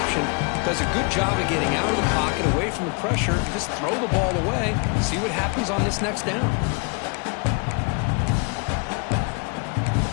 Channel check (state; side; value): quieter; right; 33.8 dB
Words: Does a good job of getting out of the pocket, away from the pressure, and just throw the ball away. See what happens on this next down.